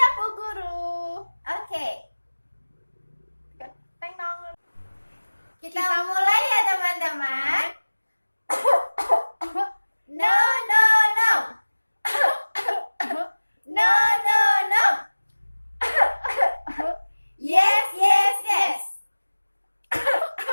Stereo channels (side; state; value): both; inverted; correlation -1.00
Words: Bu Guru. Oke, Teng dong. kita mulai ya teman-teman. No, no, no. No, no, no. Yes, yes, yes.